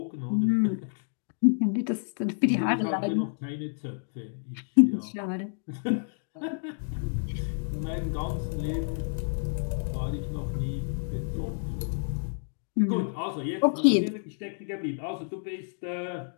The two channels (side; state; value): right; silent; digital silence